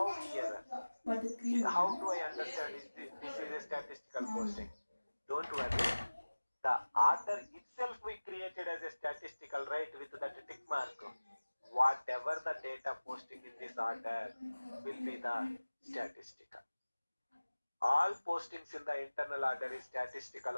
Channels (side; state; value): both; inverted; correlation -1.00